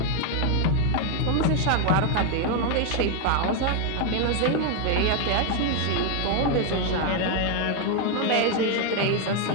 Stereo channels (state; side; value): different; both; correlation 0.01